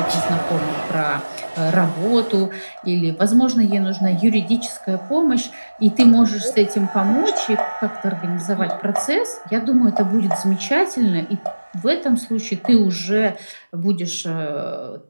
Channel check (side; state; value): both; inverted; correlation -1.00